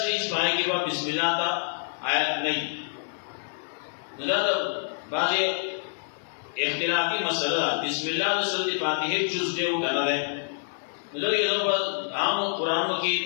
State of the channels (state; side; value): silent; right; digital silence